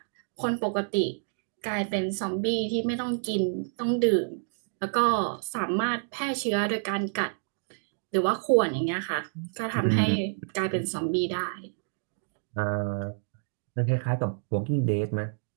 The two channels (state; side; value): silent; left; digital silence